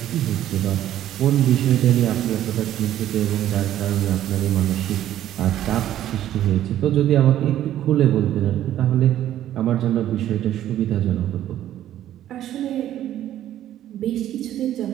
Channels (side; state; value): left; quieter; 12.2 dB